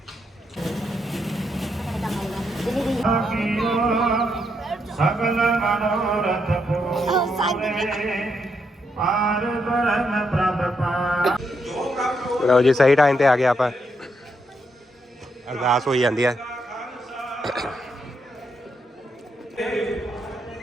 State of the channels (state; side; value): normal; both; correlation 0.79